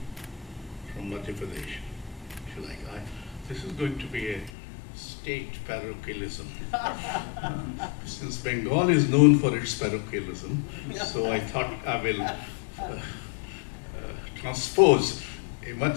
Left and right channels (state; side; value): drops out; right; at 4.5 s